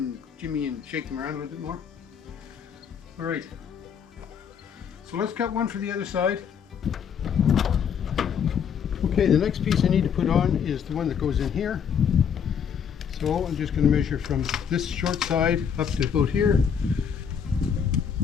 jimmy and shake them around a little bit more. All right. So let's cut one for the other side. Okay, the next piece I need to put on is the one that goes in here. So I'm just going to measure from this short side up to about here.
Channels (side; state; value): right; quieter; 7.5 dB